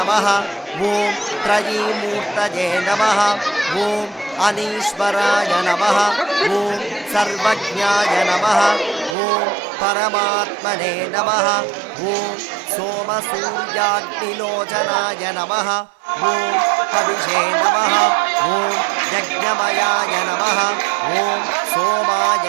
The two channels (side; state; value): left; drops out; at 9.2 s